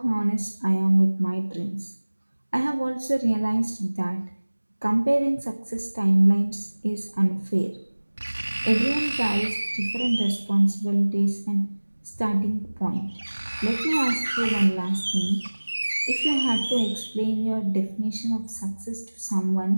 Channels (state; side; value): inverted; both; correlation -1.00